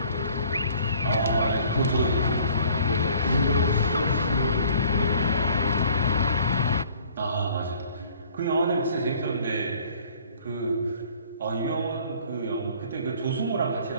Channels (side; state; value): both; inverted; correlation -0.54